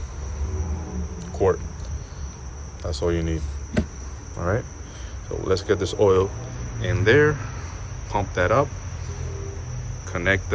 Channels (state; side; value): identical; both; correlation 1.00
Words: quart. That's all you need. All right. So let's get this oil in there. Pump that up. Connect